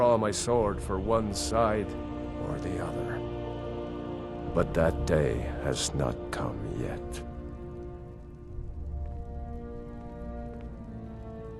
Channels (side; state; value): both; identical; correlation 1.00